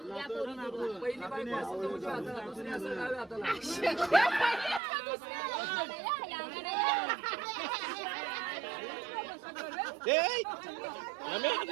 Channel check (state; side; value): drops out; left; at 4.8 s